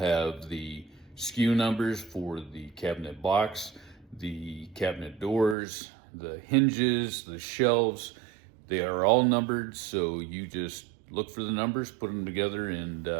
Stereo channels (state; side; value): drops out; left; at 5.6 s